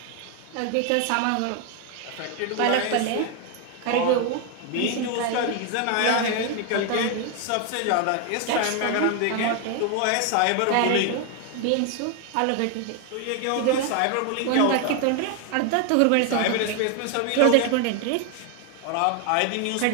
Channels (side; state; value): both; different; correlation 0.01